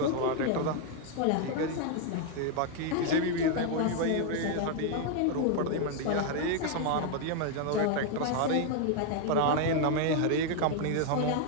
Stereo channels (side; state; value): both; different; correlation 0.00